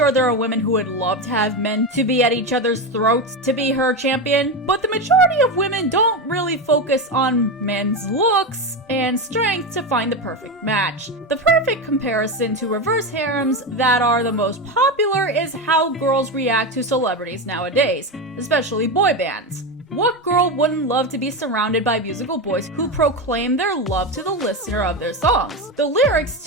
there are women who would love to have men to be at each other's throats to be her champion, but the majority of women don't really focus on men's looks and strength to find the perfect match. The perfect comparison to reverse harems that are the most popular is how girls react to celebrities nowadays, especially boy bands. What girl wouldn't love to be surrounded by musical boys who proclaim their love to the listener of their songs? The lyrics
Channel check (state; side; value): normal; both; correlation 0.16